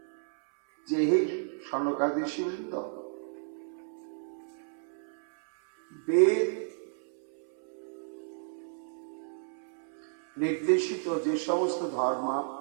যে, হে সনকাদি ঋষিবৃন্দ, বেদ নির্দেশিত যে সমস্ত ধর্ম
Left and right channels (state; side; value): silent; left; 56 dB below the other